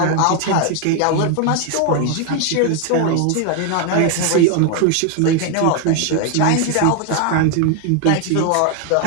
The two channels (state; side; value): different; both; correlation 0.01